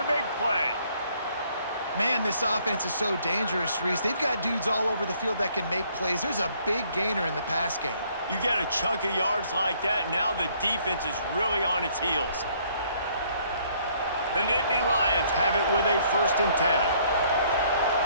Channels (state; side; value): inverted; both; correlation -0.64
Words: big play. Man, this offense is so dangerous, Reese. They've got dudes all over the field that can make plays. There's a big gainer in the pass game. You get a chunk of yards like that, now the defense is really on its heels. The Nittany Lions have it with a 1st and 10.